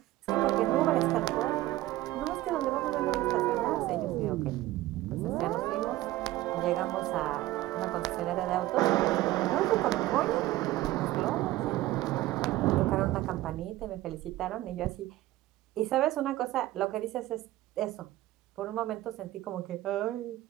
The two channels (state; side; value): quieter; left; 16.5 dB